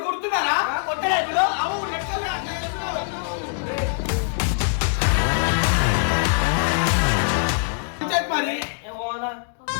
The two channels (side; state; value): right; silent; digital silence